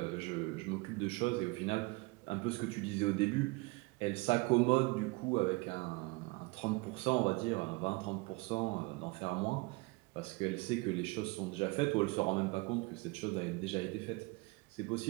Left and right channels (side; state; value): left; quieter; 25.4 dB